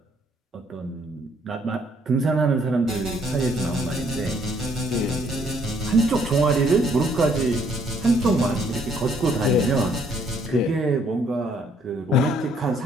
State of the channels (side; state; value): both; normal; correlation 0.66